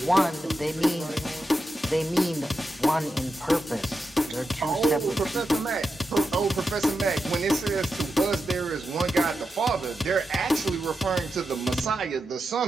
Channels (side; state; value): both; normal; correlation 0.88